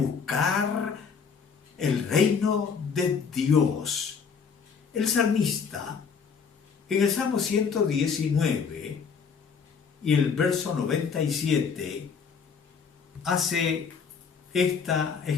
el reino de Dios. El salmista, en el Salmo 119 y el verso 97, hace esta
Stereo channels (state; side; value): quieter; right; 6.0 dB